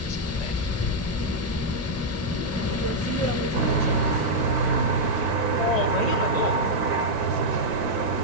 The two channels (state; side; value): normal; both; correlation -0.03